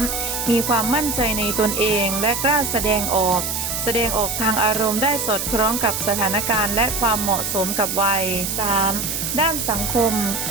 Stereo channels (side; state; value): right; noise; hiss, 2 dB below the sound